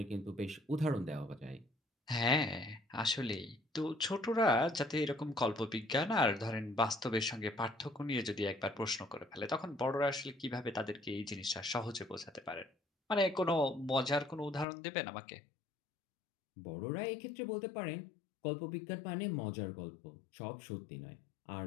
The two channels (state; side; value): drops out; right; at 14.7 s